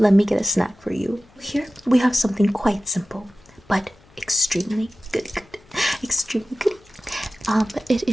me get a snack for you. Here, we have something quite simple, but extremely good. Extremely good. It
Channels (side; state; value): left; noise; hum, 29 dB below the sound